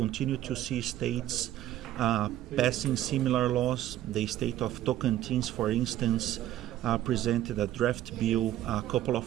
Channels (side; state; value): left; quieter; 12.9 dB